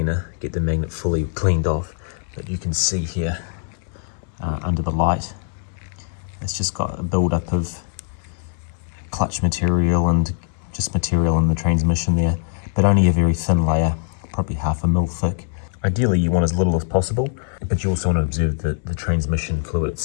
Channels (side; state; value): right; silent; 63 dB below the other